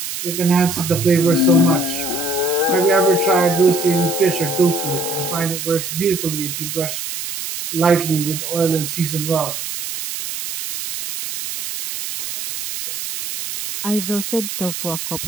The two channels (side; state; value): right; noise; hiss, 6 dB below the sound